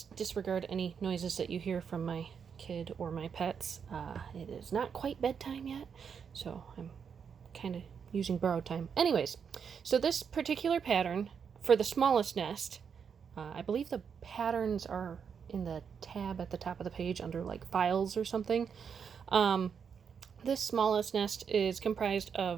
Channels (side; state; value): left; quieter; 6.8 dB